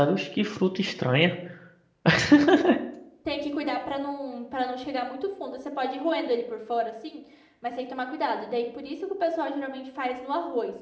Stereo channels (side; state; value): both; identical; correlation 1.00